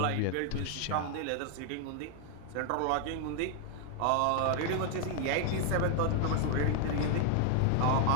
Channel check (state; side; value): different; both; correlation 0.00